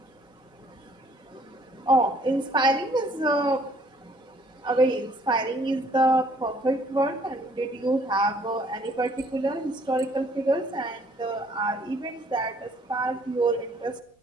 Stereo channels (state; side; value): normal; both; correlation 0.61